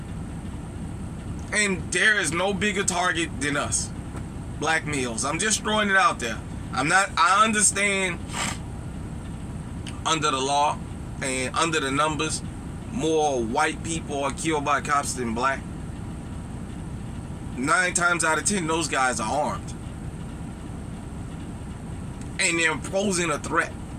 And there is no bigger target than us, black males. I'm just throwing it out there. I understand under the law and under the numbers, more white people are killed by cops than black. 9 times out of 10, those guys are armed. And they're posing a threat.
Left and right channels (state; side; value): identical; both; correlation 1.00